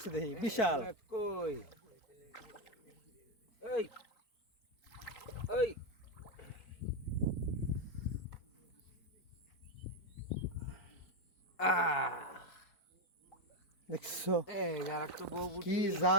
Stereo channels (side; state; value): right; late; 4.5 ms